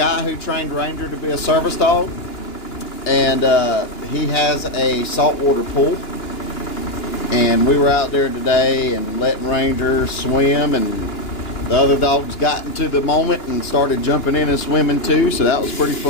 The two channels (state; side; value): late; right; 2.9 ms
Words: who trained Ranger to be a service dog, and he has a saltwater pool. And we were out there today and letting Ranger swim, and the other dogs got into the moment and started jumping in and swimming too, so that was pretty